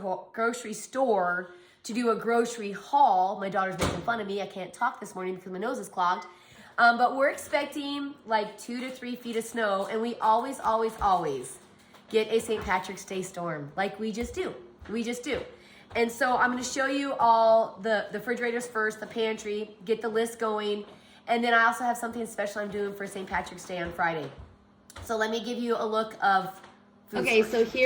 store to do a grocery haul. My daughter's making fun of me. I can't talk this morning because my nose is clogged. But we're expecting like 2 to 3 feet of snow, and we always get a St. Patrick's Day storm. Like we just do. And so I'm gonna show you all the refrigerators first, the pantry, get the list going, and then I also have something special I'm doing for St. Patrick's Day on Friday. So let me give you a look of food. Okay, so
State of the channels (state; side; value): identical; both; correlation 1.00